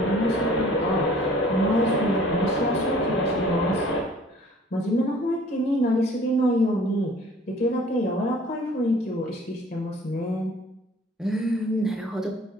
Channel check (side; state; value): both; normal; correlation 0.52